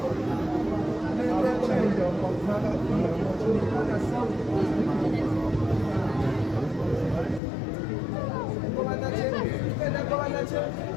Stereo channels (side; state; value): right; drops out; at 7.4 s